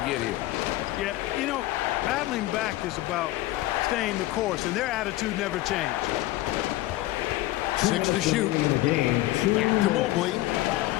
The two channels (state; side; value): quieter; right; 17.0 dB